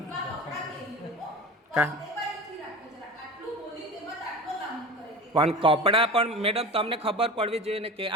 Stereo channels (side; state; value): both; normal; correlation 0.33